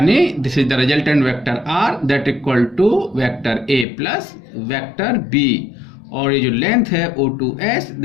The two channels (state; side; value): drops out; right; at 3.9 s